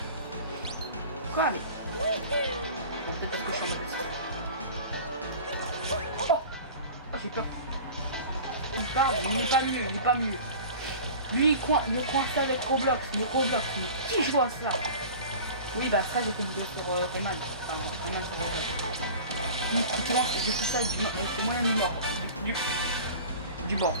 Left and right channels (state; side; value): inverted; both; correlation -0.39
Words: Quoi, mais... Bon, peut-être parce que je suis en mode... Oh, j'ai peur. Il parle, mais il n'est pas mieux, il n'est pas mieux. Lui, il est coincé avec Roblox, mais Roblox, mais qui joue à ça? Oui, bah ça, j'ai fait une vidéo sur Rayman. Enfin, Rayman sur Roblox. Tu vois, j'ai fait ça avec c'est moyen du mort. Du bord.